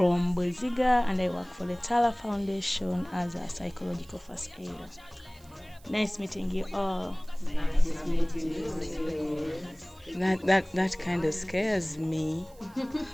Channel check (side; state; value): right; noise; hiss, 27 dB below the sound